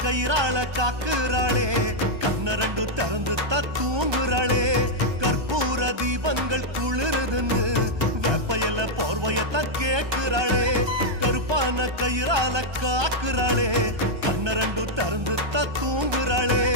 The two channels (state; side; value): late; left; 1.2 ms